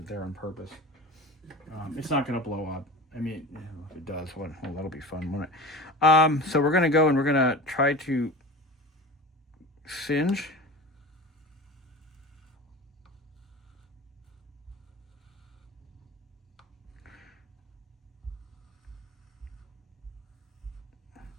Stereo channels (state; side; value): normal; both; correlation 0.33